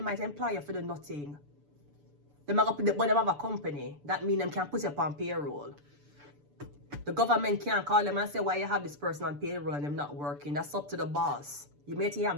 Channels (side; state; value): left; late; 6.9 ms